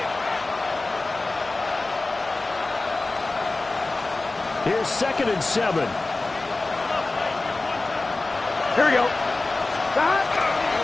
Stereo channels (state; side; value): quieter; right; 3.2 dB